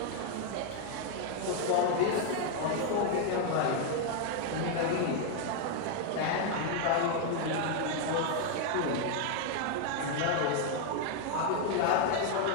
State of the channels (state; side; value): different; both; correlation 0.00